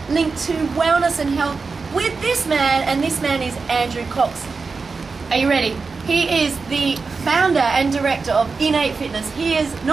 linked to wellness and health with this man, and this man is Andrew Cox. Are you ready? He is the founder and director of Innate Fitness. He is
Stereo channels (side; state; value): left; quieter; 4.5 dB